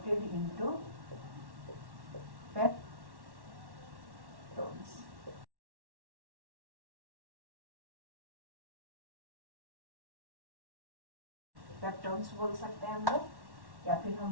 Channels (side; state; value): left; late; 1.1 ms